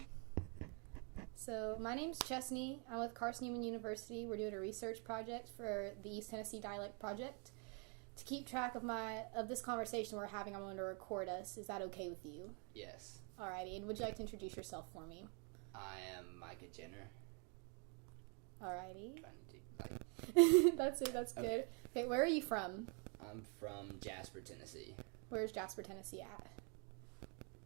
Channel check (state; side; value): quieter; left; 36.9 dB